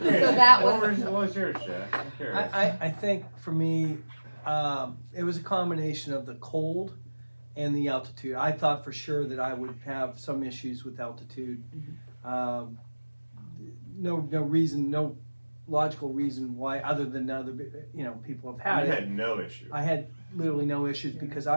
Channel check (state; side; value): inverted; both; correlation -1.00